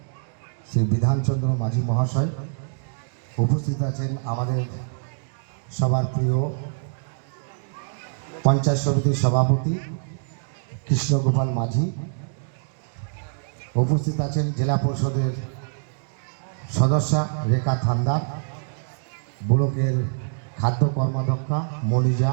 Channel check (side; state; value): left; silent; digital silence